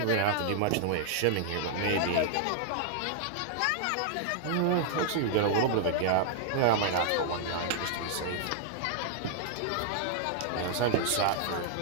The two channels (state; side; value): different; both; correlation -0.01